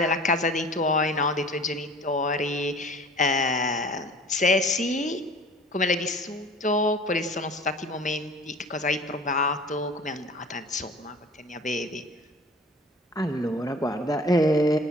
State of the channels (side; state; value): both; normal; correlation 0.45